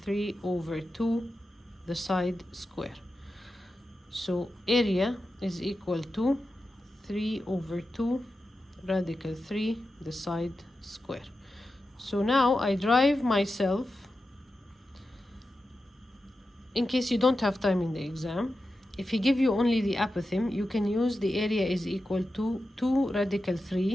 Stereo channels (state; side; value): normal; both; correlation 0.91